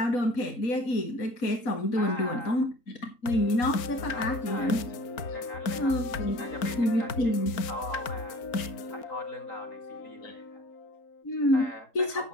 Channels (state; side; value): late; right; 4.4 ms